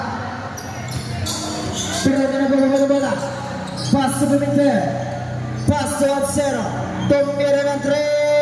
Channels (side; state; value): both; identical; correlation 1.00